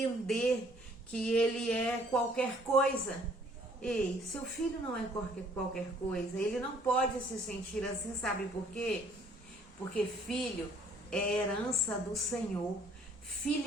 que ele é qualquer coisa. Ei, seu filho não é qualquer coisa, ele não pode se sentir assim, sabe por quê? Porque filho é herança do Senhor,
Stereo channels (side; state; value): both; normal; correlation 0.60